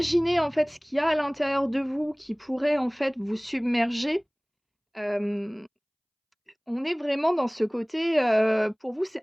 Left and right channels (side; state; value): both; identical; correlation 1.00